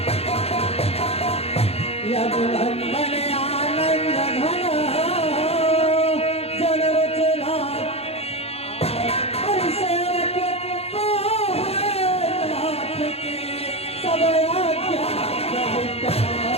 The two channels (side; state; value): right; late; 0.29 ms